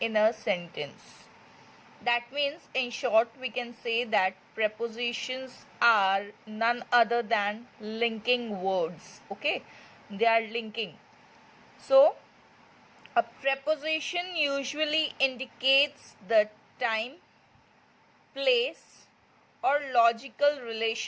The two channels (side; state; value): both; identical; correlation 1.00